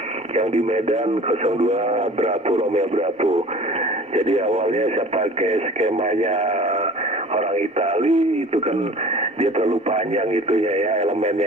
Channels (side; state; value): both; normal; correlation 0.43